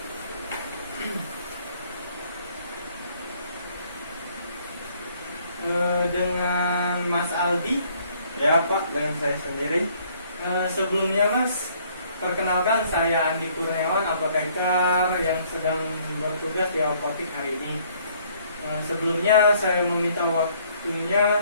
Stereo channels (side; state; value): both; inverted; correlation -0.63